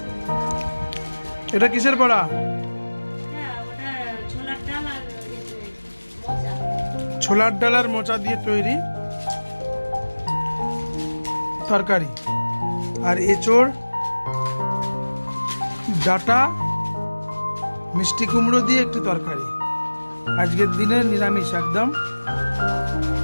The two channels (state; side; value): inverted; both; correlation -1.00